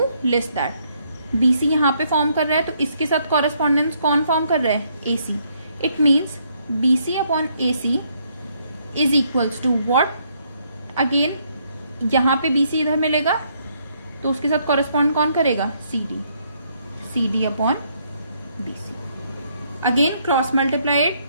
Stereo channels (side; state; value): both; inverted; correlation -0.71